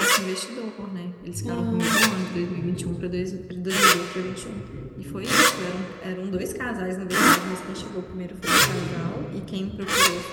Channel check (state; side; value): identical; both; correlation 1.00